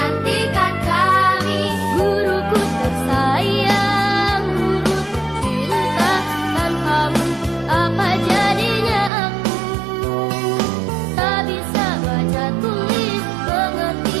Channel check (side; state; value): left; drops out; at 9.1 s